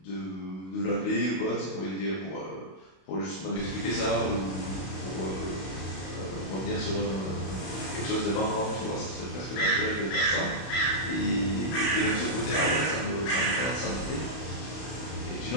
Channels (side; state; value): right; late; 32 ms